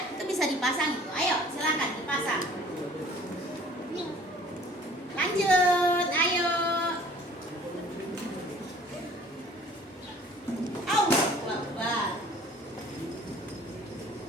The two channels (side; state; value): both; normal; correlation 0.51